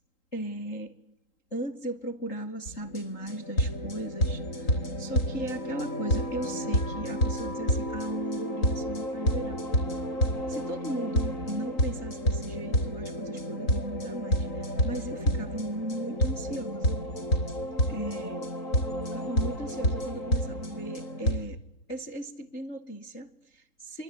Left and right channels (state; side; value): late; right; 3.8 ms